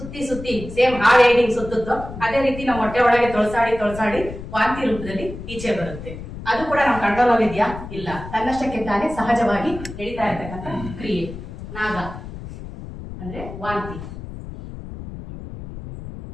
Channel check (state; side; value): noise; left; rumble, 11 dB below the sound